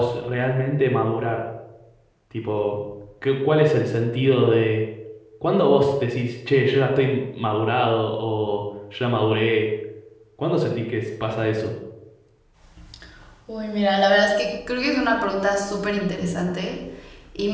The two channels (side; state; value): both; identical; correlation 1.00